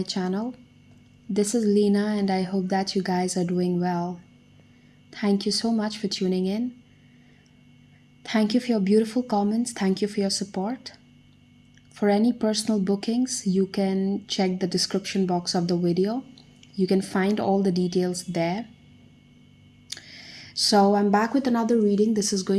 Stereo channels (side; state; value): both; identical; correlation 1.00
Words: channel. This is Leena and I hope that you guys are doing well. Thank you so much for tuning in. Thank you for your beautiful comments. Thank you for your support. For any personal bookings, you can check the description box of the video. You can find all the details there. So I'm back with another reading. This is